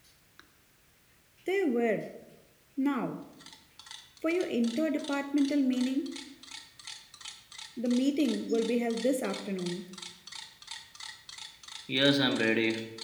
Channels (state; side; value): identical; both; correlation 1.00